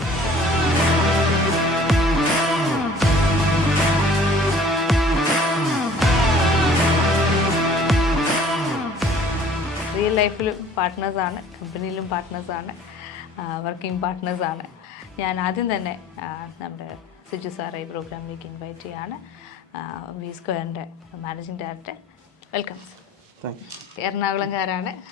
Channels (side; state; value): both; normal; correlation 0.51